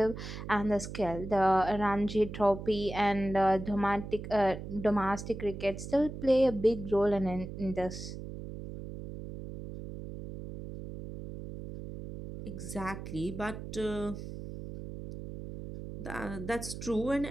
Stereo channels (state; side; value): noise; right; hum, 9 dB below the sound